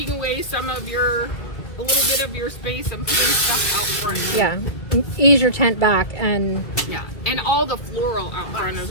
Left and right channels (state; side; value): late; right; 1.9 ms